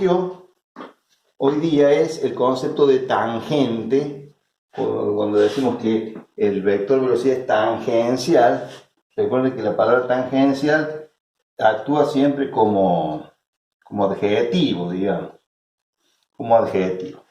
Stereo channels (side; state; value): both; identical; correlation 1.00